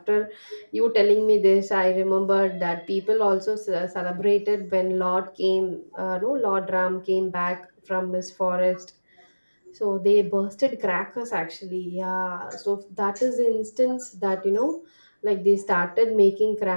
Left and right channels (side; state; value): both; inverted; correlation -1.00